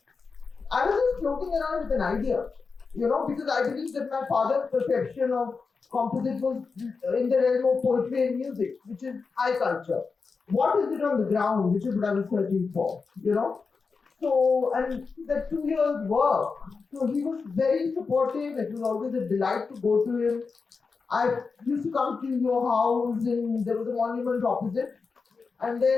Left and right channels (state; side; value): quieter; right; 4.8 dB